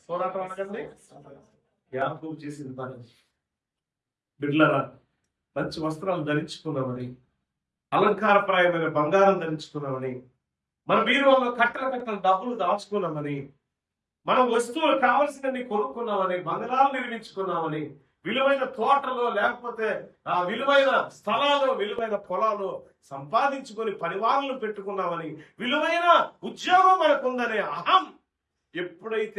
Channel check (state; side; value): identical; both; correlation 1.00